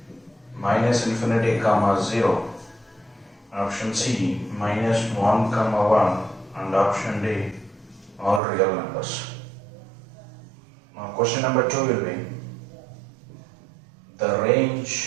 minus infinity comma 0, option C minus 1 comma 1, and option D all real numbers. Now question number 2 will be the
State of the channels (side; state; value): left; drops out; at 8.4 s